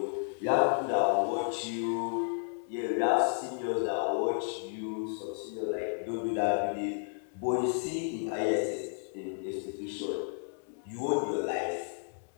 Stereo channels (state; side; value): silent; right; 56 dB below the other